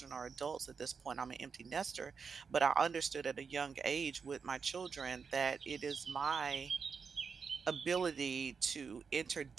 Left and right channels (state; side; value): quieter; left; 5.7 dB